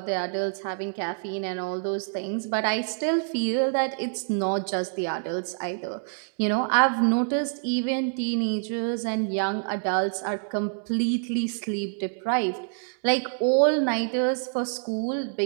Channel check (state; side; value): silent; left; digital silence